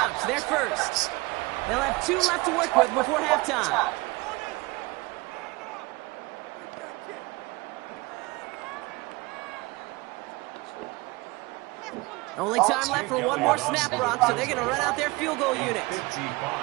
They're first. They'll have 2 left to work with before halftime. Only time left for one more snap, Brock, so they're going to run out their field goal unit.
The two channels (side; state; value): left; quieter; 23.4 dB